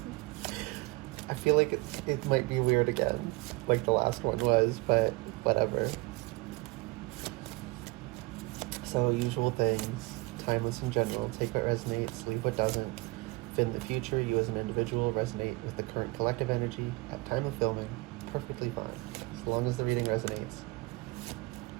I feel like it might be weird again, like the last one was, but whatever. So, usual things, timeless in general, take what resonates, leave what doesn't. If in the future you as an individual resonate with the current collective energy at time of filming, perfectly fine. As long as the reading resonates,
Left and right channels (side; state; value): left; quieter; 23.5 dB